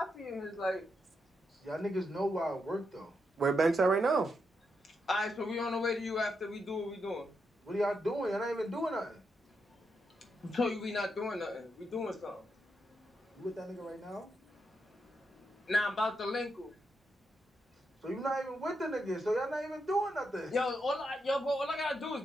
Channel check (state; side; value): normal; both; correlation 0.83